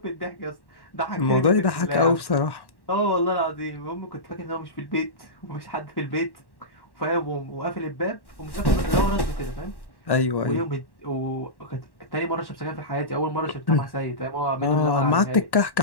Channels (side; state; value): right; late; 1.1 ms